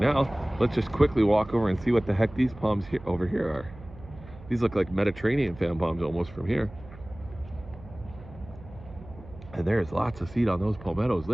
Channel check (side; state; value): right; noise; hum, 18 dB below the sound